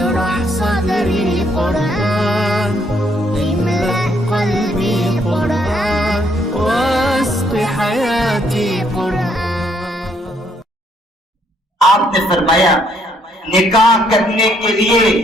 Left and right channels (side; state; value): both; normal; correlation 0.70